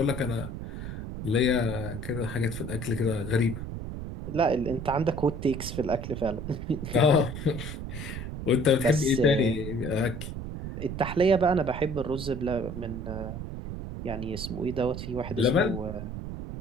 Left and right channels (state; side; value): noise; right; rumble, 7 dB below the sound